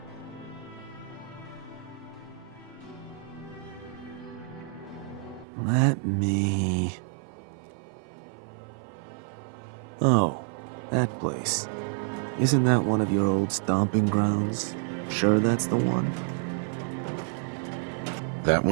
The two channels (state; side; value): drops out; left; at 5.5 s